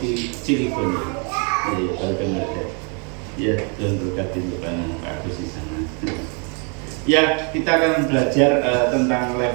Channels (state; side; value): quieter; left; 36.7 dB